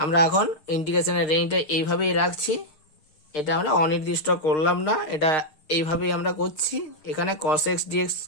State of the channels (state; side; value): late; right; 6.5 ms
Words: আমরা এখন ইন্টিগ্রেশনের রেঞ্জটা এইভাবেই রাখছি, এটা আমরা অনির্দিষ্ট করলাম না, এটা এইভাবেই আমরা করছি। এখানে cos x dx